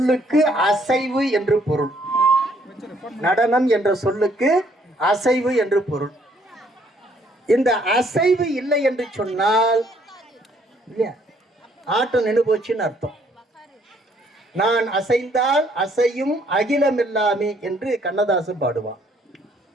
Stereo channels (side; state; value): both; normal; correlation 0.66